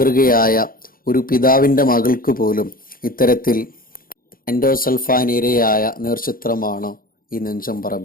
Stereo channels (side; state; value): right; late; 0.42 ms